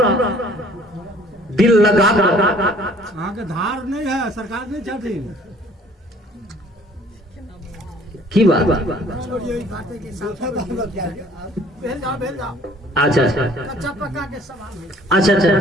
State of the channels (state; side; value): normal; both; correlation 0.55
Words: दिल लगा के धार नहीं है, सरकार नहीं चाहती की बात। अच्छा कच्चा पक्का के सवाल अच्छा